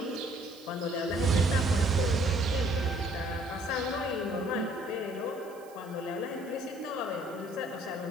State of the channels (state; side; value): noise; right; hiss, 24 dB below the sound